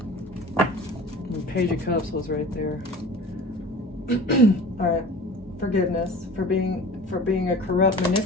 And Page of Cups was right there. All right, forgiveness for being a corrupt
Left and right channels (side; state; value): both; normal; correlation 0.39